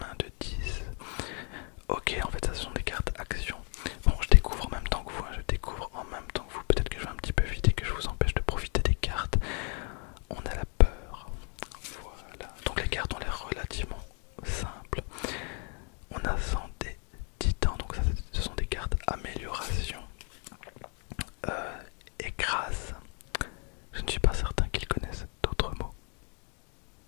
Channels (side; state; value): right; quieter; 38.6 dB